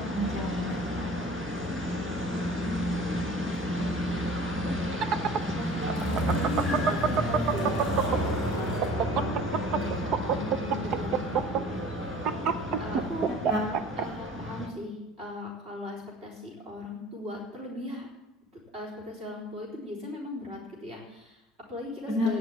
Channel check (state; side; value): normal; both; correlation 0.46